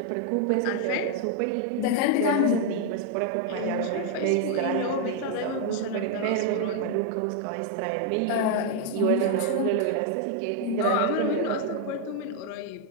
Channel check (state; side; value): different; both; correlation 0.00